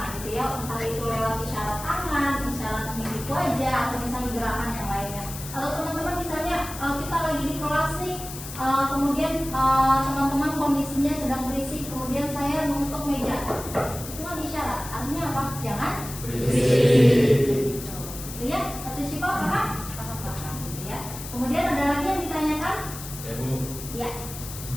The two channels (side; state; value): left; noise; hiss, 11 dB below the sound